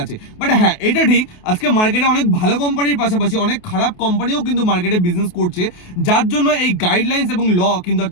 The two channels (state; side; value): late; right; 28 ms